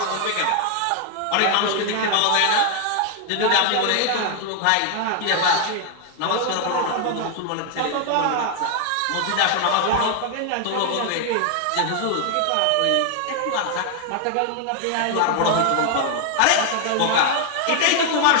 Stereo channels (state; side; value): different; both; correlation 0.00